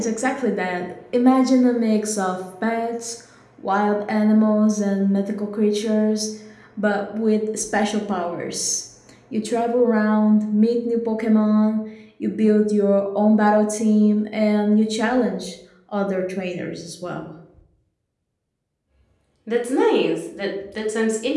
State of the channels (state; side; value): identical; both; correlation 1.00